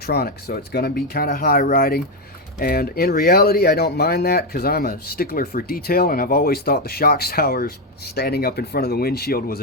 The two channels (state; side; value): normal; both; correlation 0.06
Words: so it's going to be kind of high riding. And in reality, I don't mind that because I'm a stickler for detail, and I've always thought the shock towers standing up in front of the windshield was